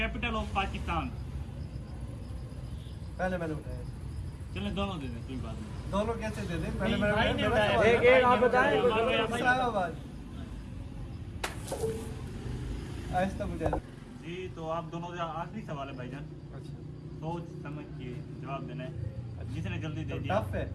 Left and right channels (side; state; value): both; identical; correlation 1.00